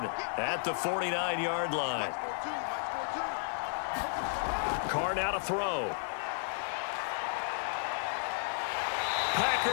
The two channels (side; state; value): right; silent; 56 dB below the other